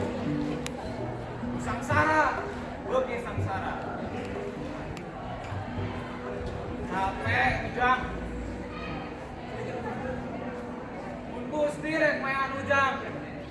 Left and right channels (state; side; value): identical; both; correlation 1.00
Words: Sangsara, bagi sangsara. Capek, ujang. Gusti rek mayan ujang.